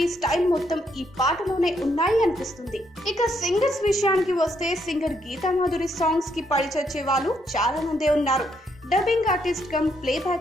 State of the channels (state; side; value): normal; both; correlation 0.75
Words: స్టైల్ మొత్తం ఈ పాటలోనే ఉన్నాయి అనిపిస్తుంది. ఇక సింగర్స్ విషయానికి వస్తే సింగర్ గీతా మాధురి సాంగ్స్ కి పడిచొచ్చే వాళ్ళు చాలా మందే ఉన్నారు. Dubbing artist cum